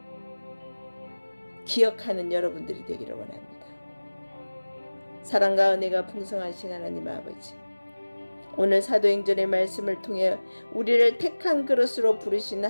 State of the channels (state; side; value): inverted; both; correlation -1.00